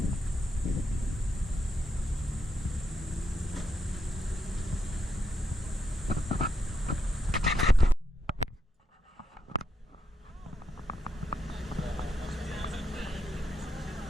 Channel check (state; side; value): normal; both; correlation 0.81